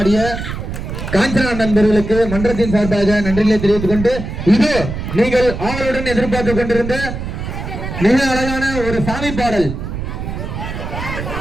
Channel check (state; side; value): noise; right; rumble, 6 dB below the sound